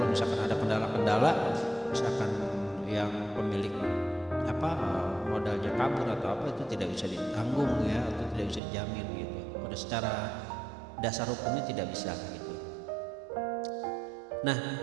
misalkan ada kendala-kendala misalkan yang pemilik modalnya kabur atau itu tidak bisa ditanggung atau tidak bisa dijamin pada secara dasar hukumnya tidak bisa Nah,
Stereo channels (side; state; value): left; drops out; at 8.6 s